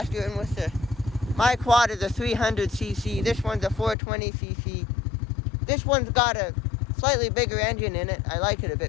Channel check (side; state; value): right; drops out; at 4.0 s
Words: And with my quad is a 300cc, this one's a 420cc. This one's got a slightly bigger engine in it. I like it a